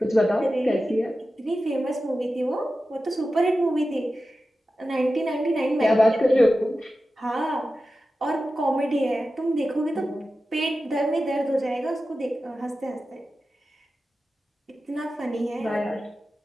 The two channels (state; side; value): normal; both; correlation 0.93